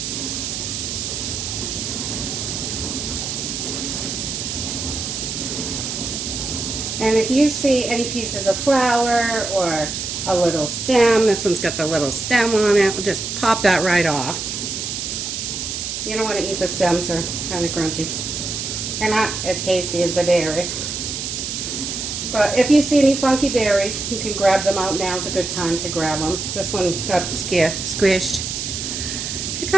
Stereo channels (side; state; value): right; noise; hiss, 4 dB below the sound